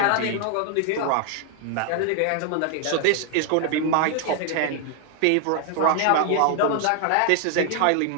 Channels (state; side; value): different; both; correlation 0.00